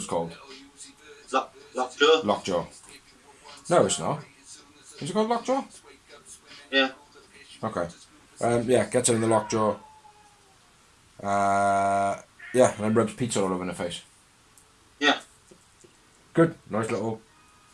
called. Lockjaw? Lockjaw. No, it's not. Is it called Lockjaw? Yeah. Okay. Yeah, gets her in the Lockjaw. Yeah, and then rubs pizza all over her face. Yeah. Good. Nice little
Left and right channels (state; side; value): identical; both; correlation 1.00